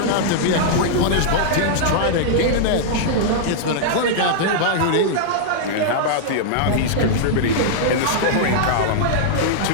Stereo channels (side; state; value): both; different; correlation -0.02